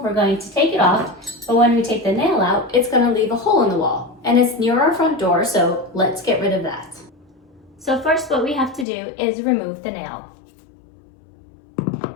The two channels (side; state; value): right; drops out; at 8.8 s